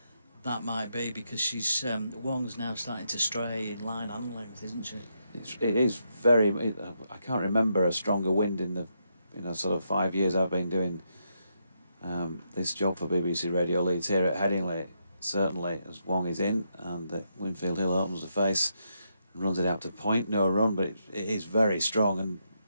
that might be, because Wong's now starting to stray in line and length, isn't she? It is very. I can't remember a stronger wind in the sort of 5 years I've been doing this job for BBC Radio Leeds here at Headingley. Certainly, as Wong is in, and Winfield-Hill opens the face and runs it out to point. No run, but it is very strong, and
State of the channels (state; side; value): inverted; both; correlation -0.80